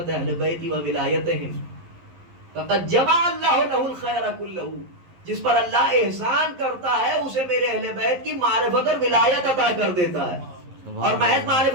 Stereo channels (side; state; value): left; late; 11 ms